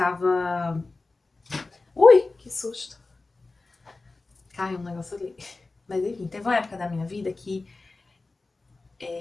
Ui, que susto! Caiu um negócio ali. Mas enfim, teve uma época da minha vida que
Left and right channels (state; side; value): quieter; right; 3.5 dB